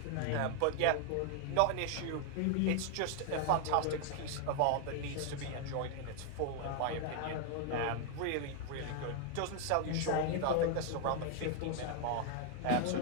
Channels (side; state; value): both; different; correlation 0.00